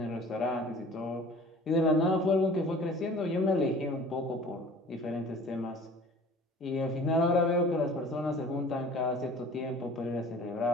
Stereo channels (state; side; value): normal; both; correlation 0.46